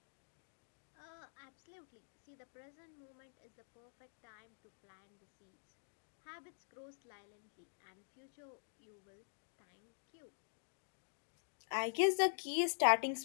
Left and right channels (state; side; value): silent; right; digital silence